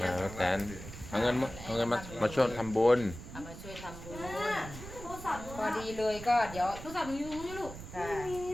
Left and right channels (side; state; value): right; noise; rumble, 12 dB below the sound